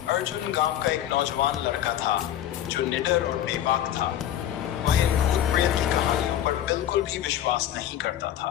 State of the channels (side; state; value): right; quieter; 11.4 dB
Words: अर्जुन गांव का एक नौजवान लड़का था जो निडर और बेबाक था। वह इन भूत प्रेत की कहानियों पर बिल्कुल भी विश्वास नहीं करता था।